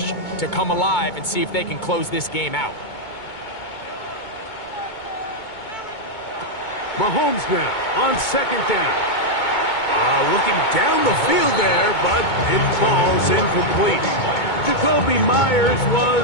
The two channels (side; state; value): right; late; 2.2 ms